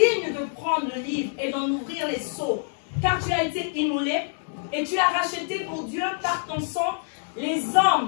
de prendre le livre et d'en ouvrir les sceaux, car tu as été immolé et tu as racheté pour Dieu par ton sang les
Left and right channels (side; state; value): right; silent; digital silence